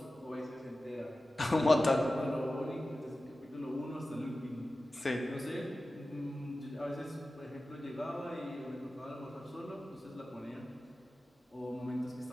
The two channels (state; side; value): normal; both; correlation 0.95